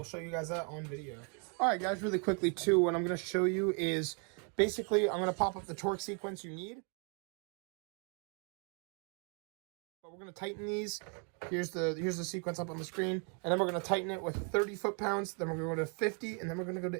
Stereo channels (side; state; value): left; quieter; 35.9 dB